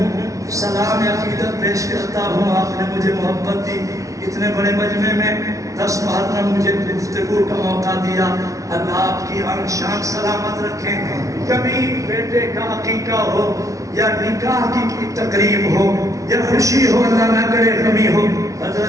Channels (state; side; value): late; left; 0.16 ms